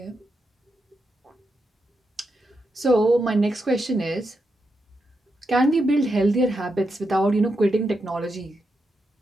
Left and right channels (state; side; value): normal; both; correlation 0.85